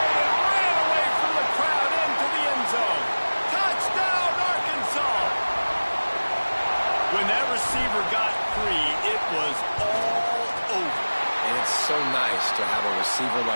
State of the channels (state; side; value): inverted; both; correlation -1.00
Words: and ran away from the crowd into the end zone. Touchdown, Arkansas! When that receiver got free, it was all over. And it's so nice to have a receiver